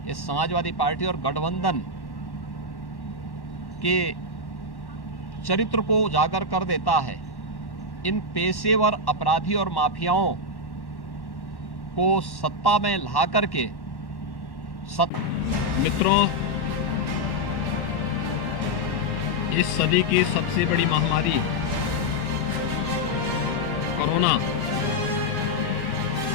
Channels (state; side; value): late; right; 1.1 ms